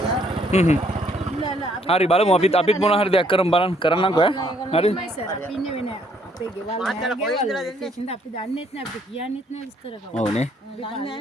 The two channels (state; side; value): normal; both; correlation 0.67